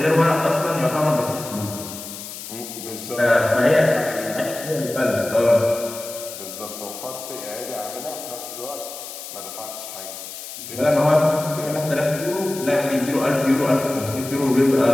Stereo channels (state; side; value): noise; left; hiss, 11 dB below the sound